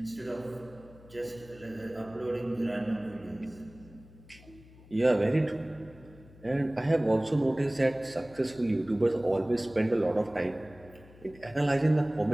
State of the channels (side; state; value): left; noise; hum, 22 dB below the sound